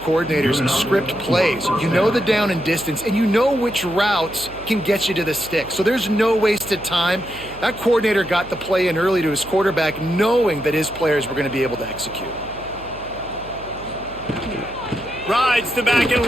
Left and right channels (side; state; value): right; noise; hum, 18 dB below the sound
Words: script plays. You know the down and distance, and you know which routes can get you to the stick. So there's no wasted time. That coordinator got the play in early to his quarterback, knowing that his players were going to be able to execute. Rides the back and